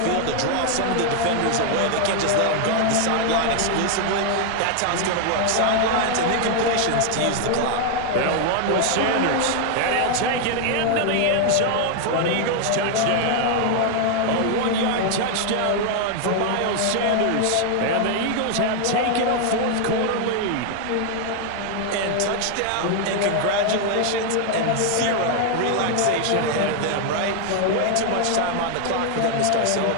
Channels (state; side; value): different; both; correlation 0.00